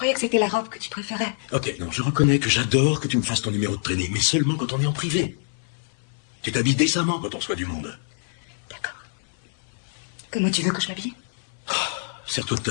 que c'était la robe que tu préférais. Ok, non, je reconnais que j'adore que tu me fasses ton numéro de traînée, mais seulement quand on est en privé. Tu t'habilles décemment quand on reçoit du monde. D'accord. Comment tu veux que je m'habille? Sers-toi de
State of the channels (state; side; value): silent; right; 62 dB below the other